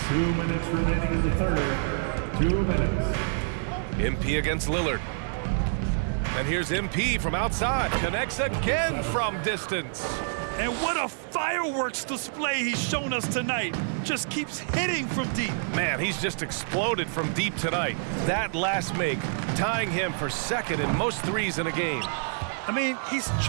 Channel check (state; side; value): silent; left; digital silence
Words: 2 minutes remaining in the third. 2 minutes. MP against Lillard. And here's MP from outside. Connects again from distance. And what a fireworks display he's shown us tonight. Just keeps hitting from deep. Man, he's just exploded from deep tonight. That last make, tying him for second in most threes in a game. I mean, he's